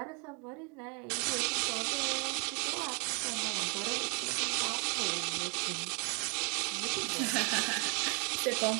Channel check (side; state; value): left; quieter; 34.0 dB